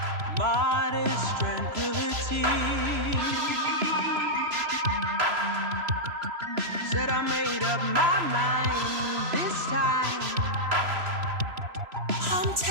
Modest tranquility. Said I made up my mind this time. I'm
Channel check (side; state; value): left; late; 3.0 ms